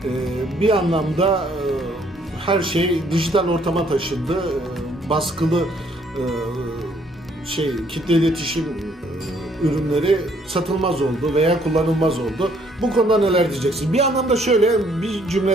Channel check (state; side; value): normal; both; correlation 0.65